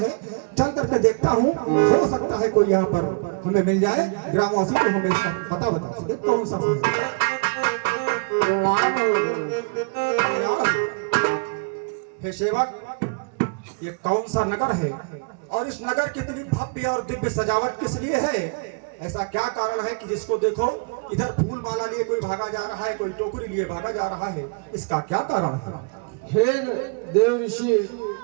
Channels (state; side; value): quieter; left; 32.3 dB